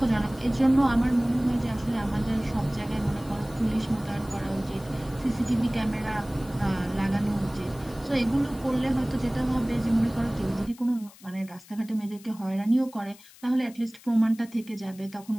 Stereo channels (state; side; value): noise; left; hiss, 23 dB below the sound